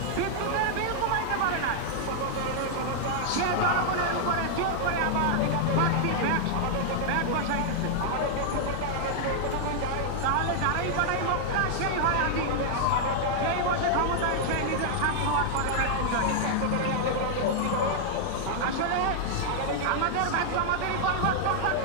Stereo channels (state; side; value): different; both; correlation -0.01